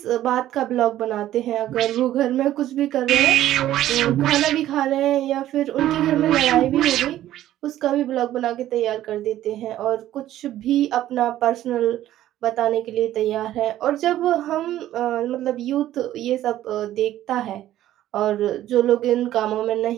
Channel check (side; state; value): left; quieter; 13.3 dB